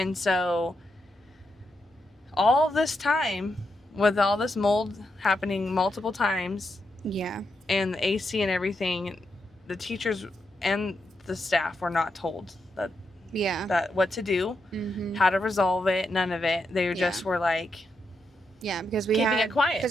so all this time, with all this mold happening multiple times, and the AC and everything, the teachers and the staff were not told that what to do, how to resolve it, none of it. They just were like, because we keeping it quiet.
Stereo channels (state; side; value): normal; both; correlation 0.83